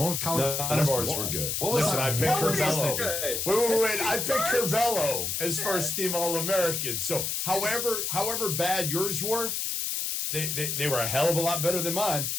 with Colin. None of ours were good. Listen, I picked Curvelo. Wait. I picked Curvelo as first-team All-American. So, however bad yours were, they were a hell of a lot better than mine.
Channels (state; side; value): noise; left; hiss, 1 dB below the sound